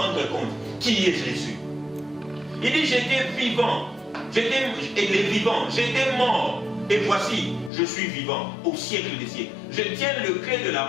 compte qui est Jésus. Il dit, j'étais vivant, j'étais mort, et voici, je suis vivant au siècle des siècles. Je tiens le clé de la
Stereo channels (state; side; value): drops out; right; at 7.7 s